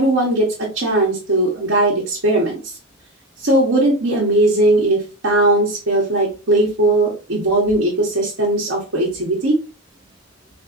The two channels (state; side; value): normal; both; correlation 0.19